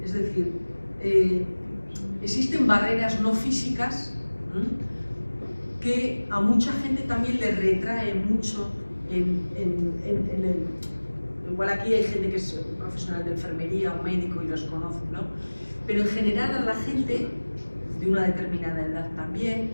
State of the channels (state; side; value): inverted; both; correlation -1.00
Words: Es decir, existen barreras no físicas que a mucha gente también le retrae mucho igual aquí hay gente que es profesional de enfermería o médico y los conoce, ¿no? Pero en general a la gente de una determinada edad también,